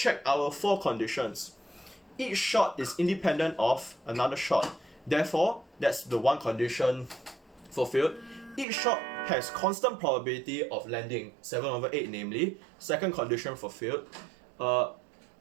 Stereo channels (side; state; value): left; drops out; at 8.7 s